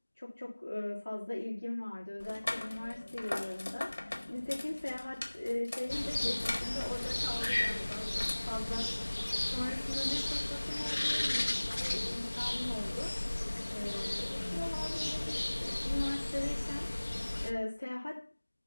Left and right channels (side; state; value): both; inverted; correlation -1.00